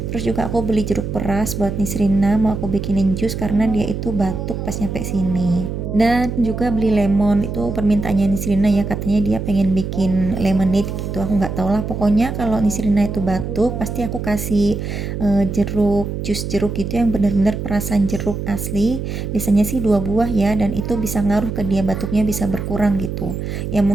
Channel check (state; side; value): noise; right; hum, 5 dB below the sound